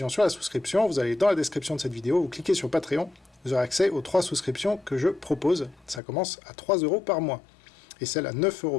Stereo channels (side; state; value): right; drops out; at 6.0 s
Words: sur la souscription, vous allez dans la description de cette vidéo, vous cliquez sur Patreon, vous aurez accès aux 3 souscriptions que je propose. Ça commence à 3 € par mois. Et celle à 9 €